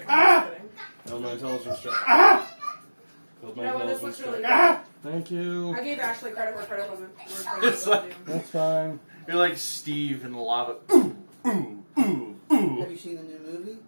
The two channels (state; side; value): inverted; both; correlation -1.00